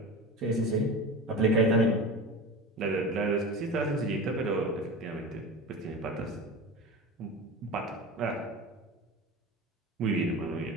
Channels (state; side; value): normal; both; correlation 0.30